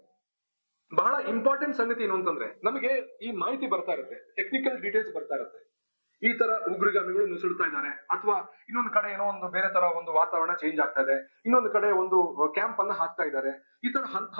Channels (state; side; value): inverted; both; correlation -1.00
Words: ಬಹಳ ಇಂಪಾರ್ಟೆಂಟ್ ಸಂಗತಿ ಏನು ಅಂತಂದ್ರೆ, ನಮಗೆ ಈ ಮಾಹಿತಿ ಬರ್ತಾ ಇರುತ್ತೆ, ಟೆಕ್ನಿಕಲ್ ಡೀಟೇಲ್ಸ್ ಬರ್ತಾ ಇರುತ್ತೆ. ಈ ತರ ಉಗ್ರಗಾಮಿಗಳು ನುಸುಳ್ತಾ ಇದ್ದಾರೆ, ಅಥವಾ ಇನ್ನೊಂದು ಕಡೆ ಏನೋ ಒಂದು ಬೇರೆ ತರ ಒಂದು ವಾತಾವರಣ ಚೇಂಜ್ ಆಗ್ತಾ ಇದೆ, ಇನ್ನೊಂದು ಕಡೆ ಒಂದು ಕ್ಯಾಂಪ್ ಅನ್ನ ಹಾಕ್ತಾ ಇದ್ದಾರೆ. ಈ ತರ